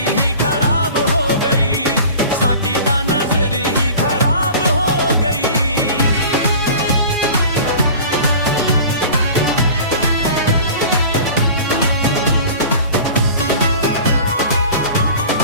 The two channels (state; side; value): inverted; both; correlation -0.41